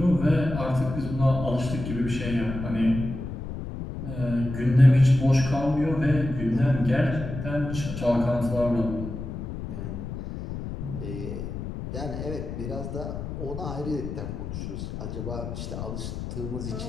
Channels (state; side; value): noise; left; rumble, 7 dB below the sound